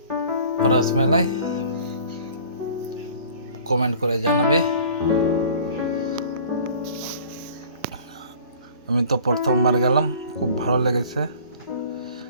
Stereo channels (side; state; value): both; inverted; correlation -0.48